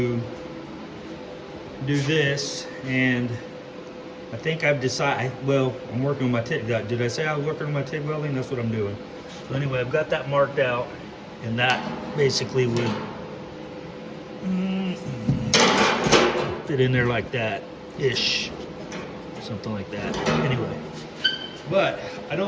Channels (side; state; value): both; identical; correlation 1.00